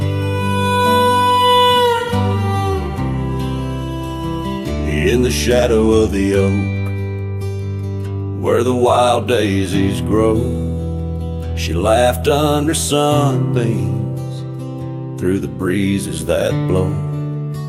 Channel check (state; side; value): identical; both; correlation 1.00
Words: In the shadow of the oak, where the wild daisies grow, she laughed under sunbeams through the breezes that blow.